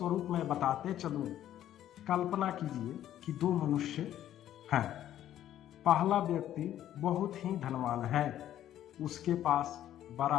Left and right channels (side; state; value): right; quieter; 11.9 dB